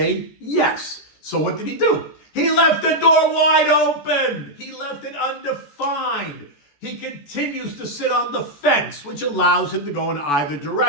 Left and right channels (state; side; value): late; right; 14 ms